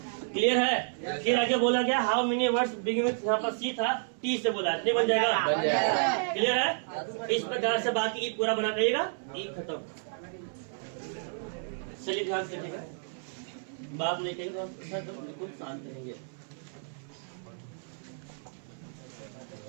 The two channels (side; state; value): left; silent; 57 dB below the other